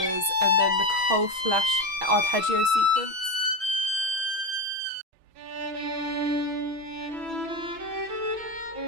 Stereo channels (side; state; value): left; late; 6.2 ms